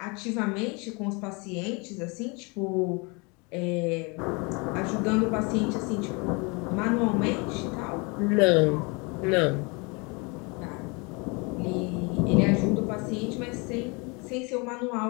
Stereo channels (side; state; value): right; quieter; 29.7 dB